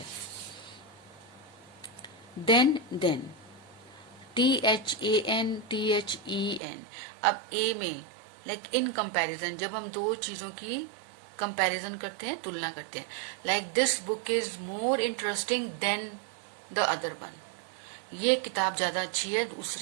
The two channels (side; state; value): left; drops out; at 6.6 s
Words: then THAN. अब A में लाइक इन कंपैरिजन, जब हम दो चीजों की कंपैरिजन करते हैं, तुलना करते हैं. Like this book is more interesting than the other one, ये किताब ज्यादा अच्छी है